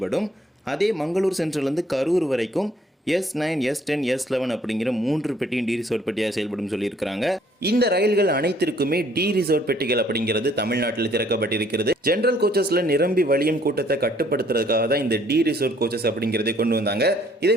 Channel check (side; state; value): both; normal; correlation 0.62